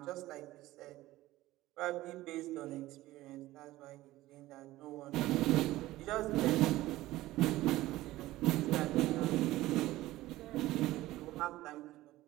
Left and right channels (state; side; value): quieter; left; 16.8 dB